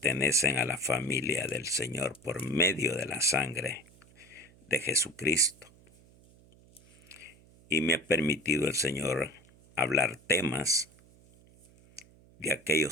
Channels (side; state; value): right; noise; hum, 27 dB below the sound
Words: a la familia del Señor por medio de la sangre de Jesucristo. Y me ha permitido el Señor hablar temas de